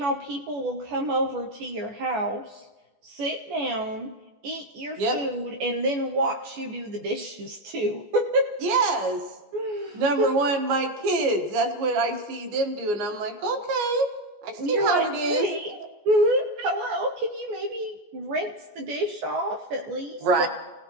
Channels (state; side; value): late; left; 14 ms